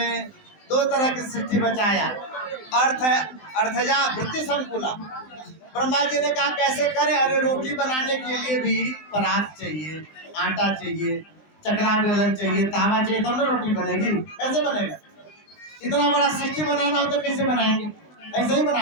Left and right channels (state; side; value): late; right; 19 ms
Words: 2 तरह की सृष्टि बचाया, अर्थजा वृत्ति संकुला। ब्रह्मा जी ने कहा कैसे करें? अरे रोटी बनाने के लिए भी परात चाहिए, आटा चाहिए, चकला बेलन चाहिए, तावा चाहिए, तब ना रोटी बनेगी। कैसे बनेगा? इतना बड़ा सृष्टि बनाना हो तो कैसे बनाएंगे? ऐसे ही